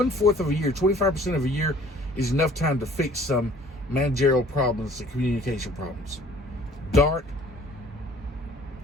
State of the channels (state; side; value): normal; both; correlation 0.53